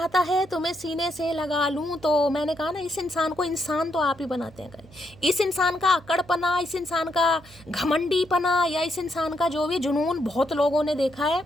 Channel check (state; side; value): noise; right; hum, 23 dB below the sound